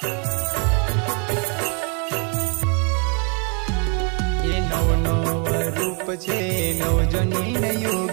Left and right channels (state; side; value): quieter; left; 36.4 dB